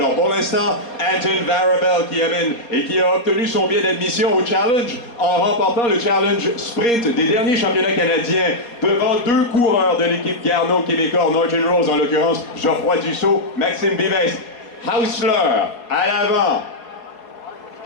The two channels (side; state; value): right; late; 4.2 ms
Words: Pour l'instant, Anton Varabel qui amène et qui a obtenu son billet d'admission au Challenge en remportant le Challenge Sprint des derniers championnats canadiens devant 2 coureurs de l'équipe Garneau québécois, Norton Rose en l'occurrence, Geoffroy Dussault, Maxime Vives. Hausler à l'avant,